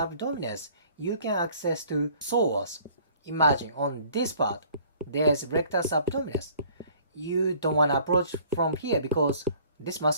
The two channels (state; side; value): inverted; both; correlation -0.55